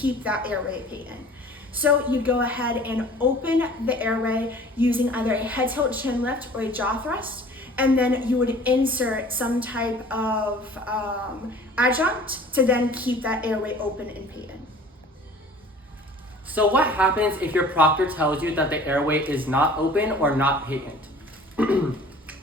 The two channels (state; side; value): normal; both; correlation 0.47